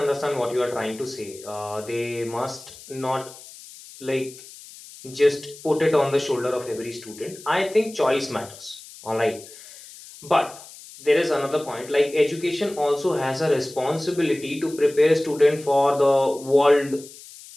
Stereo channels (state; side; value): noise; left; hiss, 18 dB below the sound